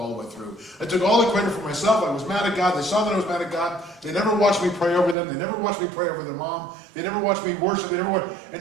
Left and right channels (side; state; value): left; drops out; at 5.2 s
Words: the way through. I took all the credit for myself. I was mad at God. They saw that I was mad at God. They never watched me pray over them. They never watched me pray over their mom. They never watched me worship.